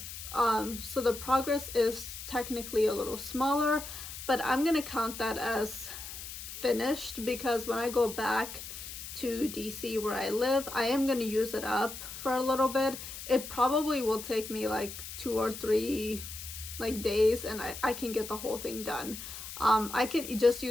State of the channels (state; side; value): noise; left; hiss, 10 dB below the sound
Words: progress is technically a little smaller, but I'm gonna count that as finished because when I go back to DC where I live, I am going to use it up for a little bit. It probably will take me like 2 or 3 days, and I can get the whole thing done. I can just